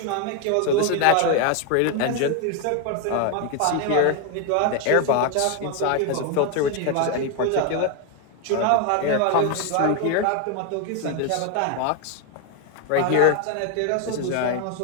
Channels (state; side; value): different; both; correlation 0.01